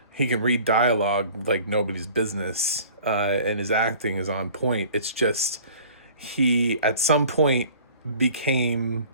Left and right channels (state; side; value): inverted; both; correlation -0.48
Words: He can read dialogue like nobody's business, and his acting is on point. It's just he, at some point,